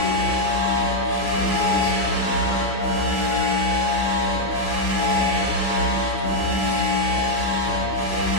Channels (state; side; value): normal; both; correlation 0.01